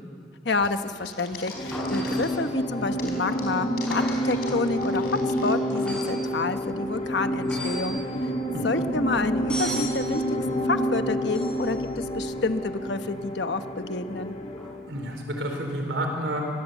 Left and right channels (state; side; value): normal; both; correlation 0.40